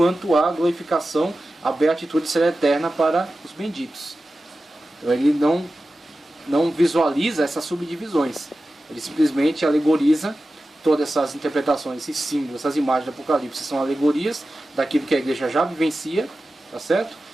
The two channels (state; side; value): normal; both; correlation 0.94